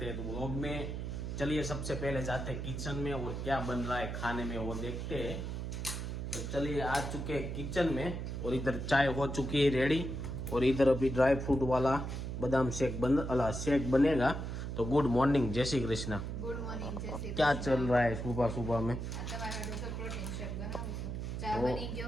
हैं। तो व्लॉग में चलिए सबसे पहले जाते हैं किचन में और क्या बन रहा है खाने में वो देखते हैं। तो चलिए आ चुके हैं किचन में और इधर चाय हो चुकी है रेडी और इधर अभी ड्राई फ्रूट वाला बादाम शेक बनेगा। तो गुड मॉर्निंग, जय श्री कृष्णा। गुड मॉर्निंग, जय श्री क्या कृष्ण। चल रहा है सुबह सुबह में? प्रोटीन शेक बनाવું છું। ચા બની ગયો?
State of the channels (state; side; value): noise; right; hum, 4 dB below the sound